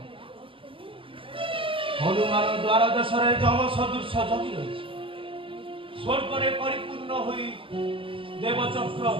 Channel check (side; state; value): left; late; 0.25 ms